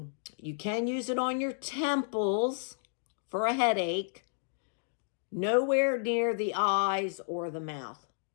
can use it on your temples for a headache. Nowhere near the eyes or the mouth.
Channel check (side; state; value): right; silent; digital silence